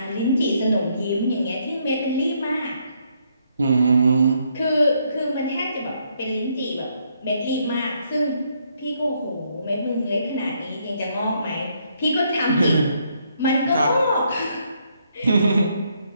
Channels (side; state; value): both; inverted; correlation -0.73